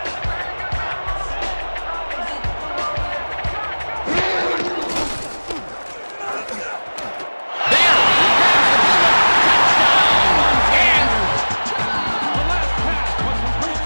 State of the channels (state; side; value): inverted; both; correlation -1.00